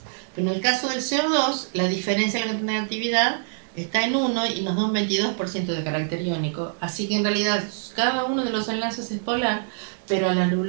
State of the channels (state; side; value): silent; left; digital silence